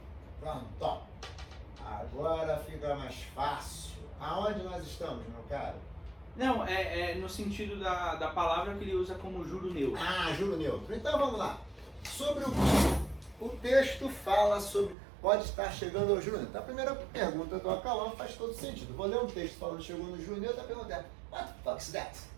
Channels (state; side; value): drops out; left; at 15.0 s